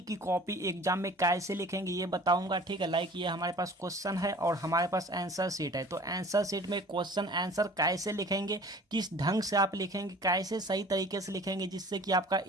कॉपी एग्जाम में कैसे लिखेंगे ये बताऊंगा। ठीक है, लाइक ये हमारे पास क्वेश्चन है और हमारे पास आंसर शीट है। तो आंसर शीट में क्वेश्चन आंसर कैसे लिखेंगे, किस ढंग से आप लिखेंगे, कैसे सही तरीके से लिखेंगे जिससे कि आपका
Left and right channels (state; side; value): normal; both; correlation 0.46